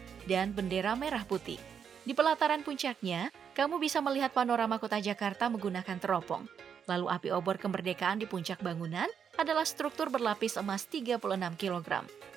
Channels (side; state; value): left; quieter; 7.4 dB